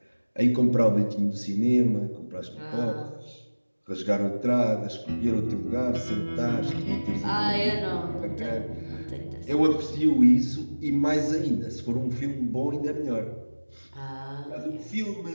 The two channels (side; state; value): both; inverted; correlation -1.00